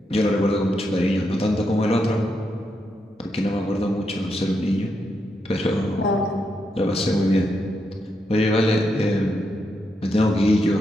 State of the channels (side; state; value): both; normal; correlation 0.82